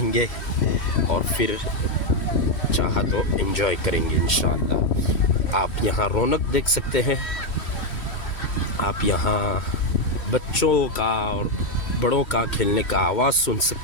और फिर चाहा तो एंजॉय करेंगे इंशाअल्लाह। आप यहाँ रौनक देख सकते हैं, आप यहाँ बच्चों का और बड़ों का खेलने का आवाज़ सुन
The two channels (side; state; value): right; late; 3.1 ms